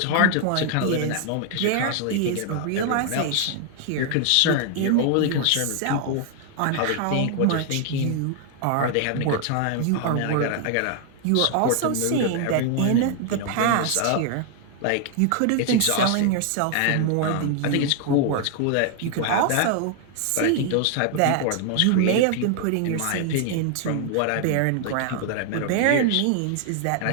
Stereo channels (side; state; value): both; different; correlation 0.00